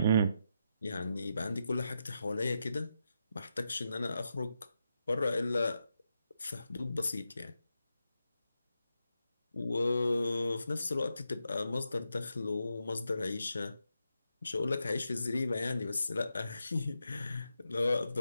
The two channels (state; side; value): inverted; both; correlation -0.85